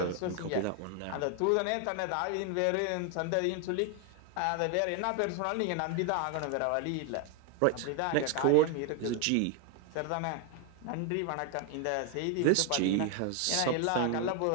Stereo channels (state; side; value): different; both; correlation 0.01